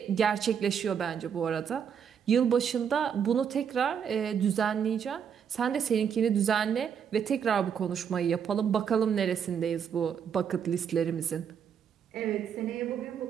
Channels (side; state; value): left; quieter; 7.7 dB